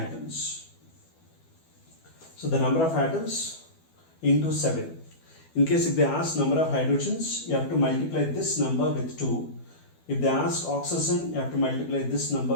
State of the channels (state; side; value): late; right; 12 ms